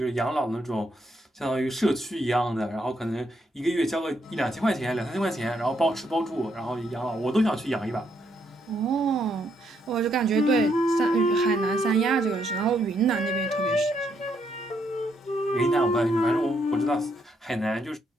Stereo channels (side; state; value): both; normal; correlation 0.75